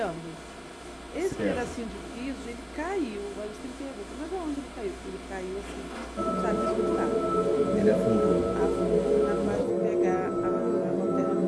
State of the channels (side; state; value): both; identical; correlation 1.00